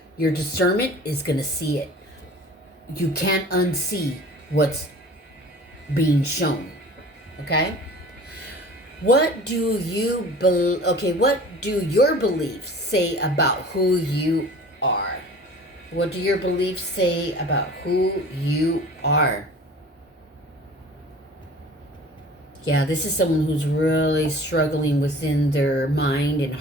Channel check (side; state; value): both; normal; correlation 0.44